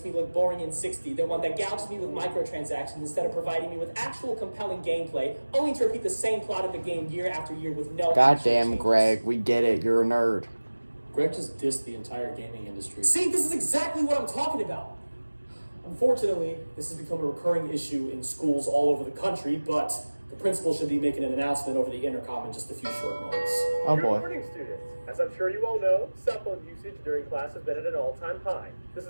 me look boring and 60 than one that gouges me with microtransactions instead of providing me with actual compelling gameplay, only to repeat the same plot of the game year after year with no Goddamn, Greg, we get it. You're a nerd. Greg just dissed the entire gaming industry. See, this is exactly what I'm talking about. Unfortunately, this has become a recurring issue in schools all over the country, but the principal should be making an announcement over the intercom in just a few short moments. Oh boy. Good morning, students. As I'm sure you all know, cell phone usage during class has been at an all-time high. This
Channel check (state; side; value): inverted; both; correlation -1.00